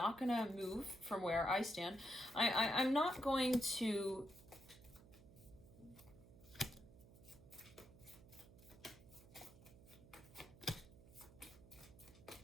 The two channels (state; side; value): noise; right; hum, 20 dB below the sound